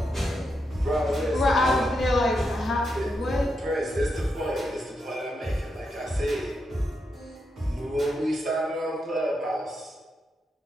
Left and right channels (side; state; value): both; normal; correlation 0.84